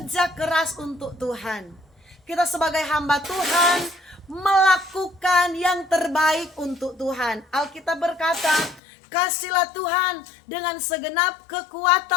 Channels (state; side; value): drops out; right; at 8.8 s